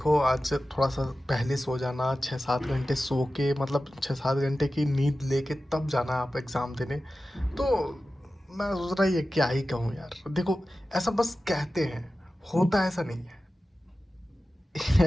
आज थोड़ा-सा पहले सो जाना, 6-7 घंटे सो के मतलब 6-7 घंटे की नींद लेके तब जाना आप एग्ज़ाम देने। तो मैं सोच रहा ये क्या ही कहूँ यार। देखो, ऐसा बस कहते हैं, होता ऐसा नहीं है।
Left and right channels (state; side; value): normal; both; correlation 0.95